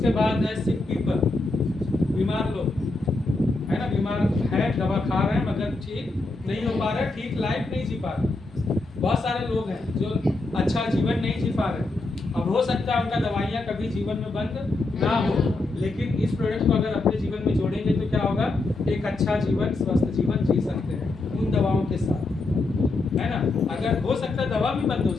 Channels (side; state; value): right; quieter; 3.2 dB